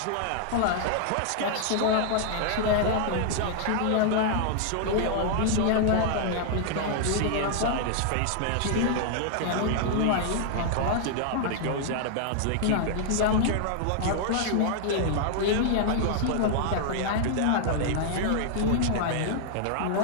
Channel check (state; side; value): different; both; correlation -0.01